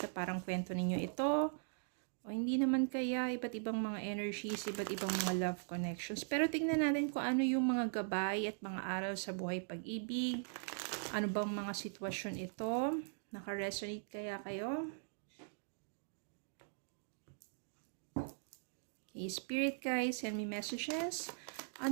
na parang kwento ninyo ito. O hindi naman kaya, iba't ibang mga energies, iba't ibang mga love connections. Pero tingnan natin kung ano yung mga gabay at mga aral sa buhay pag-ibig. Ano bang mga sitwasyon ito? Nakaresonate kaya kayo? Okay, Spirit guys, send me messages.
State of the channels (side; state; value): left; silent; digital silence